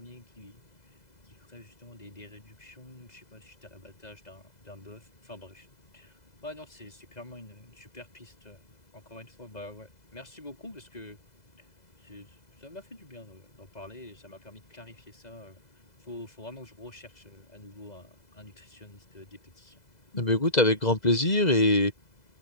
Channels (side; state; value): right; late; 2.0 ms